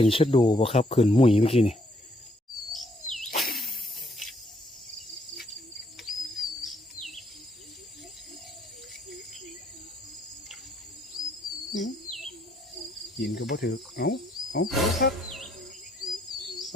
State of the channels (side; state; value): both; normal; correlation 0.69